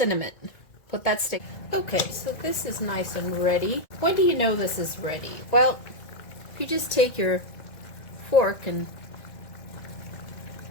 Put that stick. Okay, so this is nice and ready. When do you know this is ready? Well, if you just take your fork and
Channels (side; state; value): right; late; 2.0 ms